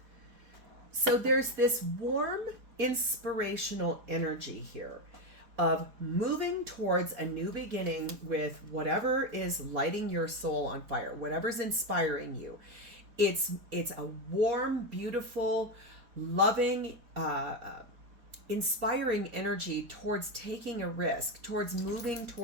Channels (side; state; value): left; late; 4.2 ms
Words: So there's this warm, inspirational energy here of moving towards a new beginning with whatever is lighting your soul on fire, whatever's inspiring you. It's a warm, beautiful, loving, inspiring energy towards taking a risk, towards moving